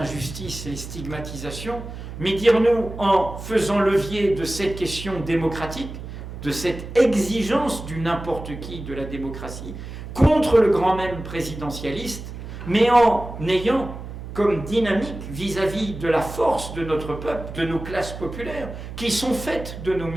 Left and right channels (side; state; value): right; noise; hum, 10 dB below the sound